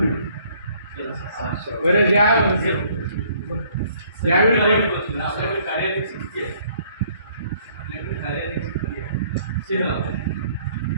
मिळेल. बरं ज्यावेळी आपल्याकडे कार्यालय स्थिती आहे, आपल्याकडे कार्यालय स्थिती आहे शहरात,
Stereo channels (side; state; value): both; inverted; correlation -0.61